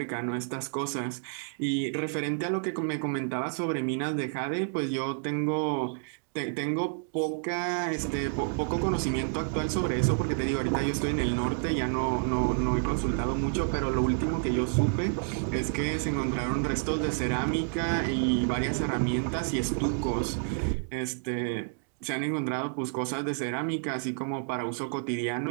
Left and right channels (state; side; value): silent; left; digital silence